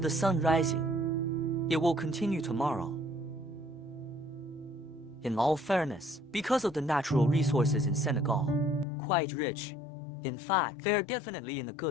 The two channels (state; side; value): drops out; right; at 8.8 s